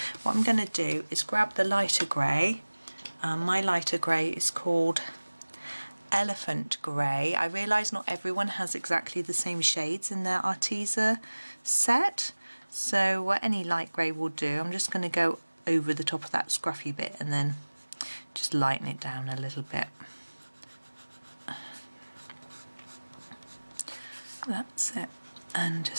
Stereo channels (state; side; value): inverted; both; correlation -1.00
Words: What I'm going to do is grab the lighter grey. My lighter grey is called Elephant Grey. I realise not everyone has exactly the same shades in their Arteza set, so any light grey will do. I'm just going to go over the top of that scruffy bit and then just lighten it down a little bit. That's it, and